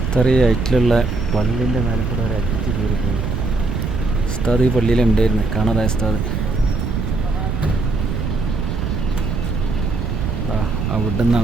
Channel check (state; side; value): noise; right; rumble, 2 dB below the sound